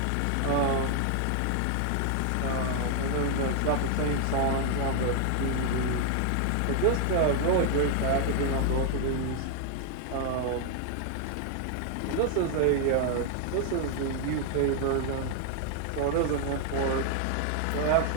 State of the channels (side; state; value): both; different; correlation 0.00